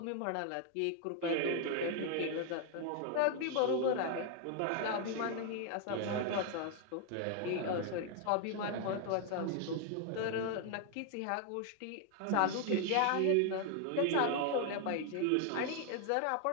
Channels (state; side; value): different; both; correlation 0.00